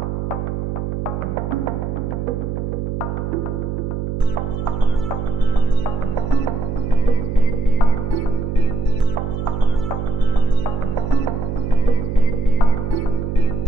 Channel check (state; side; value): noise; right; hum, 3 dB below the sound